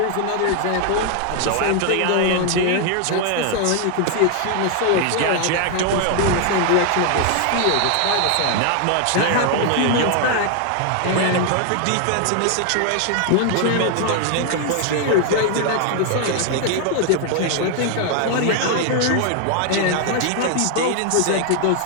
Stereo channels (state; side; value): different; both; correlation 0.00